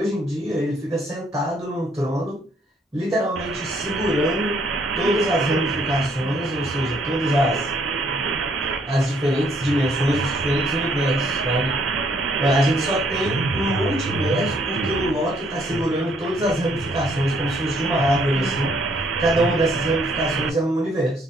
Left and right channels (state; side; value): normal; both; correlation 0.67